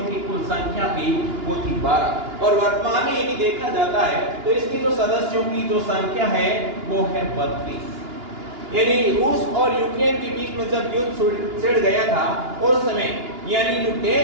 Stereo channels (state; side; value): late; left; 2.9 ms